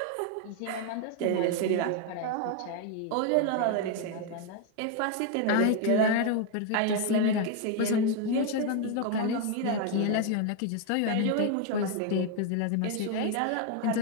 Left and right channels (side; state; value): both; different; correlation 0.01